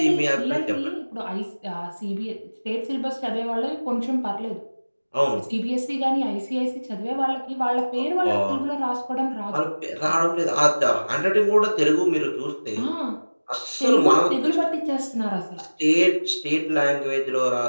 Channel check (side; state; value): both; inverted; correlation -1.00